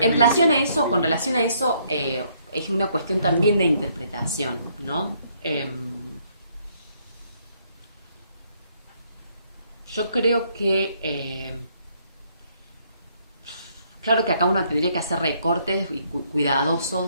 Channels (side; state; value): both; inverted; correlation -0.69